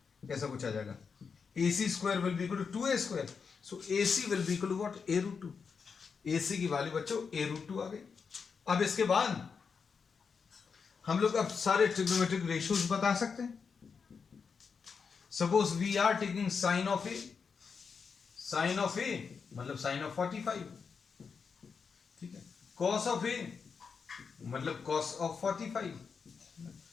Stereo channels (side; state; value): right; quieter; 5.7 dB